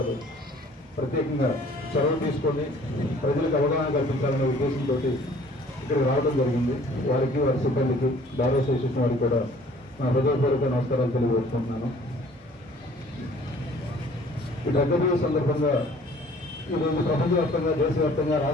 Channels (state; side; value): normal; both; correlation 0.54